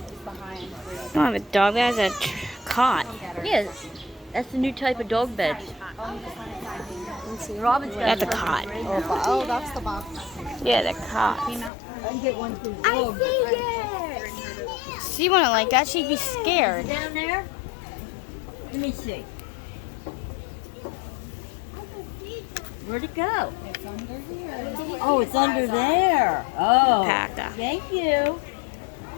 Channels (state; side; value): drops out; right; at 11.7 s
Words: it's behind. I don't have a dog that has a cot. Yeah, that's the new type of dog bed. Let's see. Robin's got That's a cot. Oh, that's the box. Yeah, the cot. I can get one for the I dog. see it. She wouldn't like that. She'd be scared. Down there? Let me see. Where'd it go? It's under here. Oh, it's under there. Oh, Packed up. thank you.